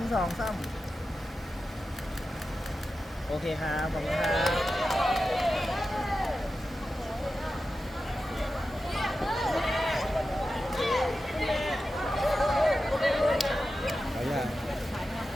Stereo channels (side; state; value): both; normal; correlation 0.92